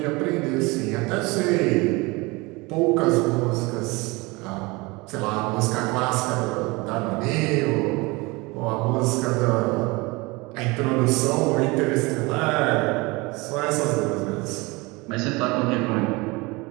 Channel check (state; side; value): quieter; left; 24.5 dB